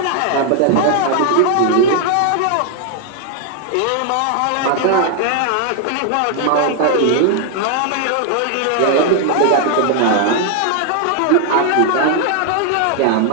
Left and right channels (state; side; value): different; both; correlation 0.00